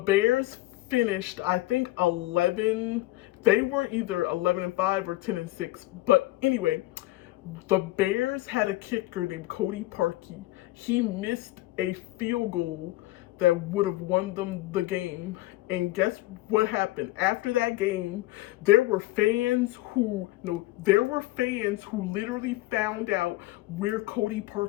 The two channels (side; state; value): right; quieter; 18.0 dB